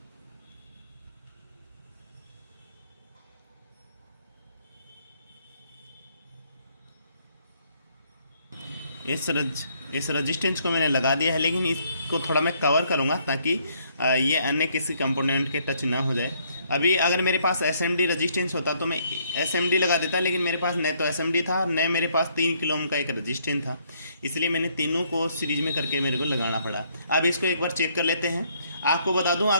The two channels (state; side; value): inverted; both; correlation -0.68